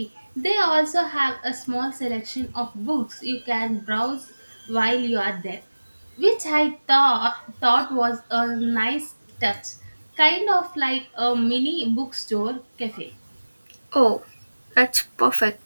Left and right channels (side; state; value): both; inverted; correlation -1.00